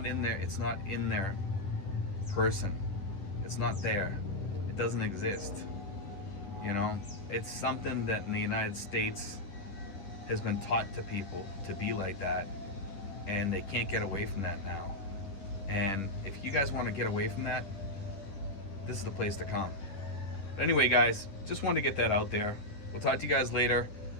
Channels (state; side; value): late; right; 10 ms